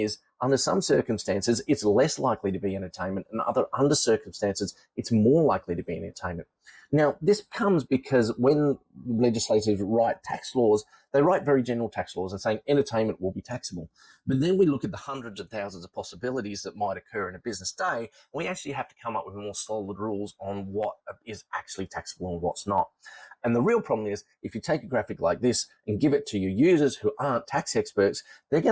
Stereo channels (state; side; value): identical; both; correlation 1.00